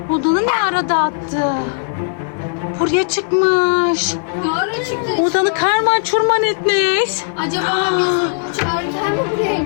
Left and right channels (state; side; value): silent; right; digital silence